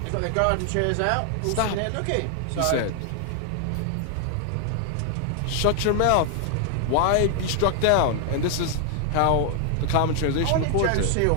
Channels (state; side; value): different; both; correlation 0.00